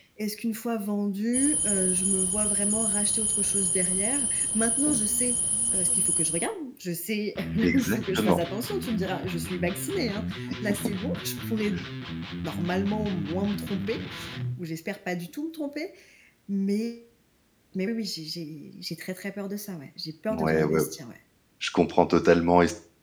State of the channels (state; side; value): identical; both; correlation 1.00